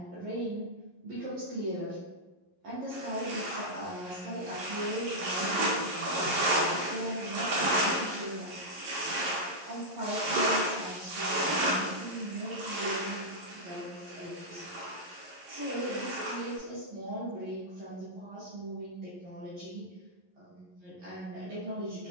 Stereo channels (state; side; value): late; left; 11 ms